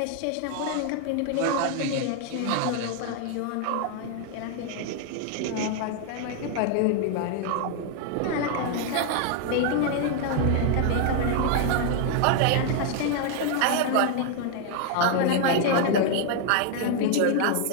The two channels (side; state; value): both; different; correlation 0.00